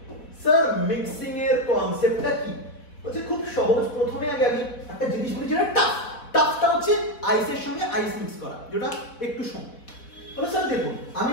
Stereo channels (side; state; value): right; late; 4.3 ms